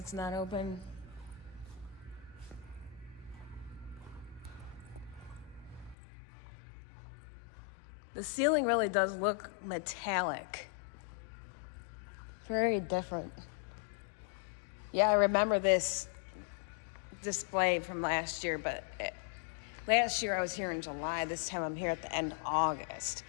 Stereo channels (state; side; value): drops out; right; at 6.0 s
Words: not open. The ceiling really does look metallic. Very different. Yeah, I remember this display from last year, but last year I was here in July. This time I'm here at the end of August.